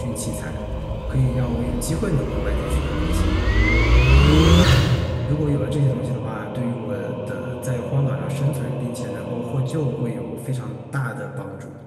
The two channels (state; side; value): identical; both; correlation 1.00